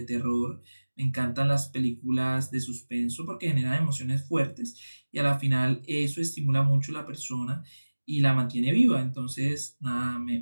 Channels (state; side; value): inverted; both; correlation -1.00